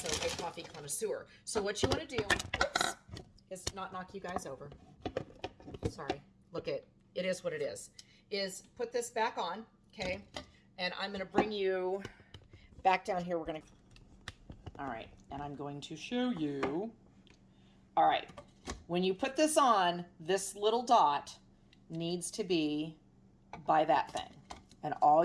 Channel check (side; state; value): both; identical; correlation 1.00